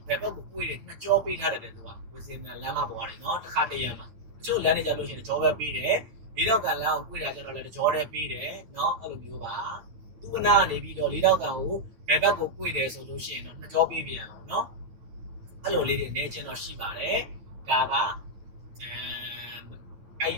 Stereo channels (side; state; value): left; late; 9.2 ms